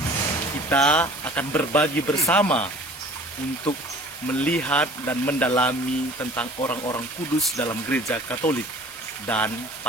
kita akan berbagi bersama untuk melihat dan mendalami tentang orang-orang kudus dalam gereja Katolik. Dan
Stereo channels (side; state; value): both; normal; correlation 0.47